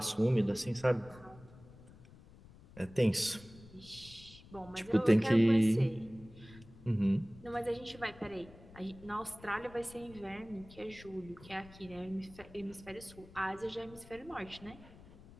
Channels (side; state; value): left; noise; rumble, 21 dB below the sound